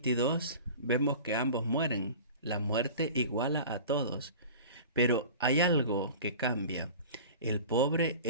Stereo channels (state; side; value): inverted; both; correlation -0.38